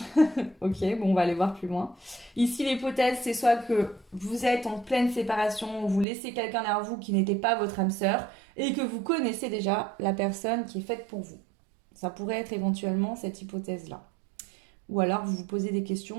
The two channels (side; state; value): left; drops out; at 6.1 s